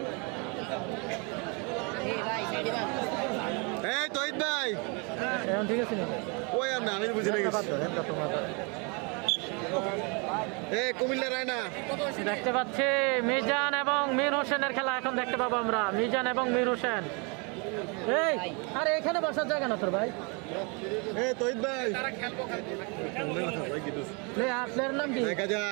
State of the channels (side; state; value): left; quieter; 32.4 dB